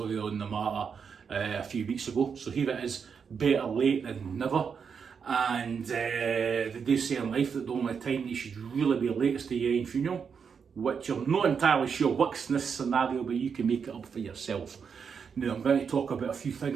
on the matter a few weeks ago. So here it is, better late than never. And they do say in life that the only time you should really be late is to your own funeral, which I'm not entirely sure works in this scenario, but you can make it up for yourself. Now I'm going to talk about a few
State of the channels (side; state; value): left; quieter; 6.4 dB